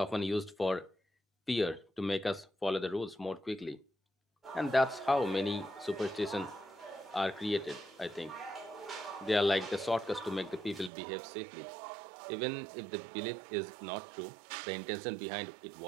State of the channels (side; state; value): left; drops out; at 10.9 s